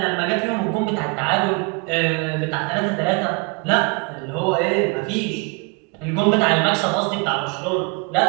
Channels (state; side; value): quieter; left; 28.8 dB